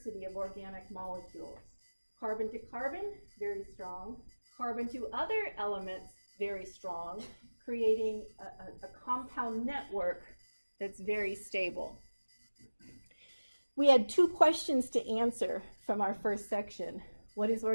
of organic molecules. Carbon to carbon, very strong. Carbon to other elements, very strong, creating a compound network that's very stable. We had two questions to answer from our first section. What is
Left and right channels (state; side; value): inverted; both; correlation -1.00